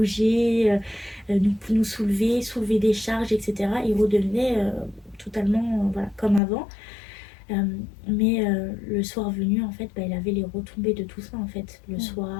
nous soulever des charges, etc. Il redevenait totalement voilà, comme avant. Mais le soir venu, en fait, il avait les retombées de tout ça, en fait. Le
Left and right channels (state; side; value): drops out; right; at 6.4 s